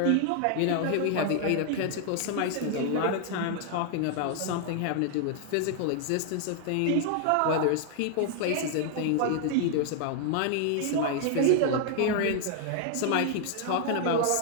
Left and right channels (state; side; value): different; both; correlation 0.00